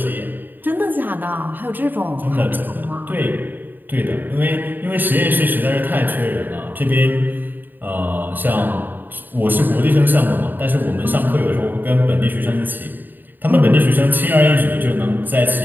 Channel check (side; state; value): left; late; 0.091 ms